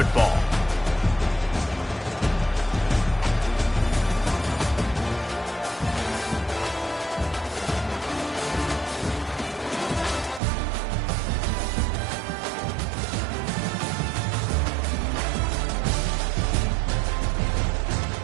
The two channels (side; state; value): left; drops out; at 10.4 s